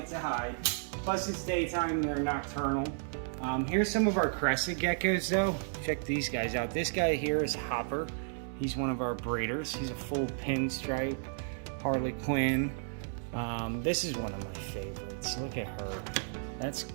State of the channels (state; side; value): silent; left; 56 dB below the other